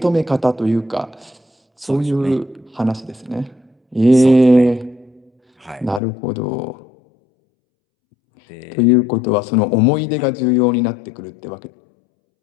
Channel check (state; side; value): drops out; right; at 6.0 s